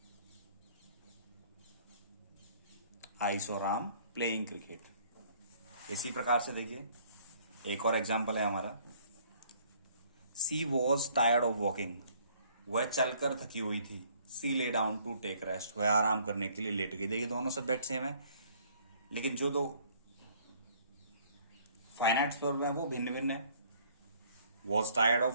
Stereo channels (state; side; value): inverted; both; correlation -0.60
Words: I saw Ram playing cricket. इसी प्रकार से देखिए एक और एग्जाम्पल है हमारा। सी वॉज टायर्ड ऑफ वॉकिंग, वह चलकर थकी हुई थी। सी lay down to take rest, वह आराम करने के लिए लेट गई। देखिए दोनों सब्जेक्ट सेम है, लेकिन जो दो फाइनाइट वर्ब है वो भिन्न भिन्न है। वॉज टायर्ड ऑफ